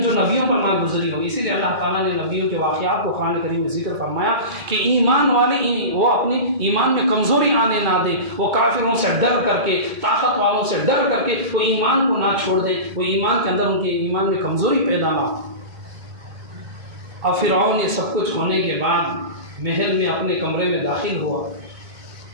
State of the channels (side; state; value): left; late; 2.3 ms